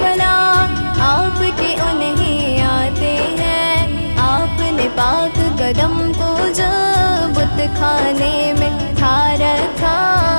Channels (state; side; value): inverted; both; correlation -1.00